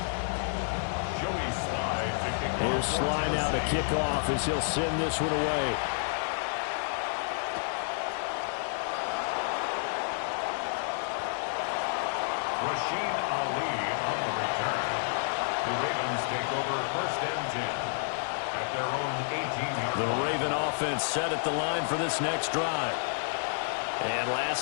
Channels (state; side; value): silent; right; digital silence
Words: Sly now to kick off as he'll send this one away. Rasheen Ali on the return. The Ravens take over 1st and 10 at their own 18-yard line. The Raven offense set at the line for this next drive. And